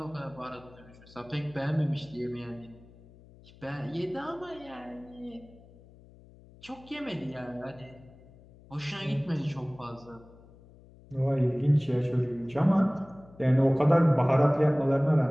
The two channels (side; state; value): left; noise; hum, 24 dB below the sound